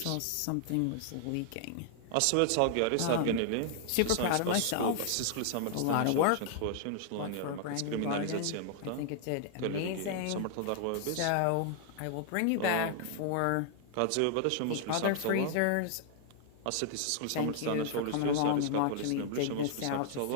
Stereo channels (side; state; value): both; different; correlation 0.00